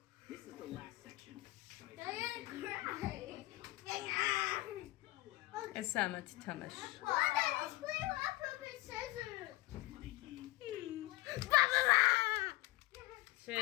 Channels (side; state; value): right; quieter; 20.1 dB